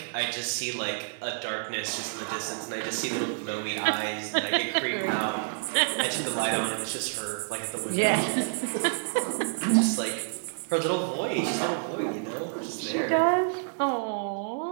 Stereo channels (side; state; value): left; silent; 56 dB below the other